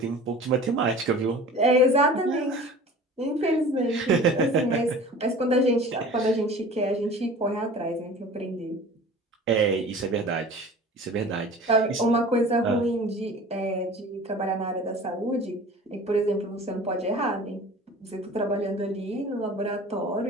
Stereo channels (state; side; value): normal; both; correlation 0.42